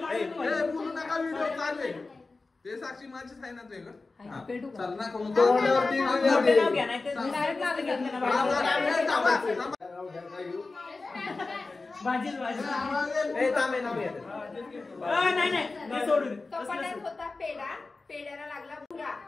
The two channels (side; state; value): right; quieter; 3.7 dB